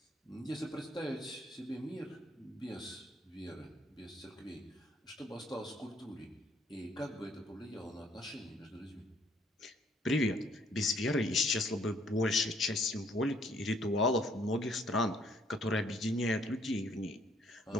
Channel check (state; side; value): normal; both; correlation 0.65